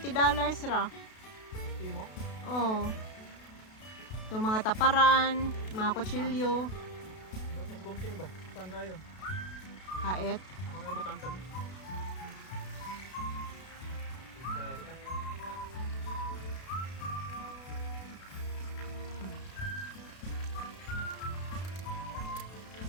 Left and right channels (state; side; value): late; right; 32 ms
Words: ra. Timo? Oh. Yung mga taparan, mga kutsilyo, Mas bunting ba? Saan kayo? hait. Ako na ibutang kami.